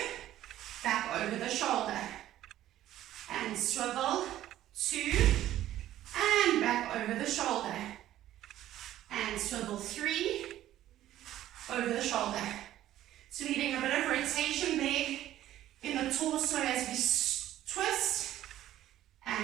back over the shoulder. And swivel, 2, and back over the shoulder. And swivel, 3, over the shoulder. So we're getting a bit of rotation there in the torso as we twist.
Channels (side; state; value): left; quieter; 13.2 dB